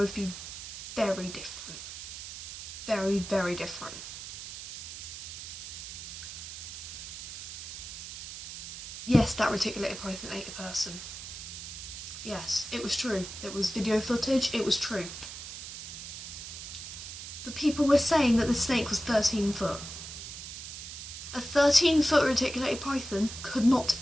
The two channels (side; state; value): right; noise; hiss, 9 dB below the sound